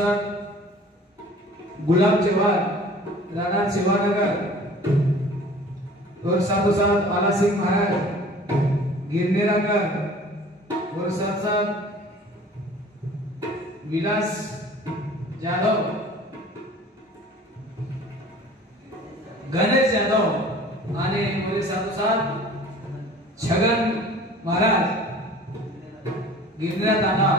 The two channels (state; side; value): normal; both; correlation 0.47